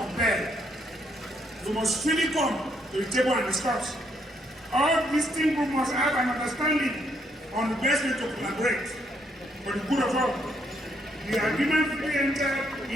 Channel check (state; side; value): normal; both; correlation 0.73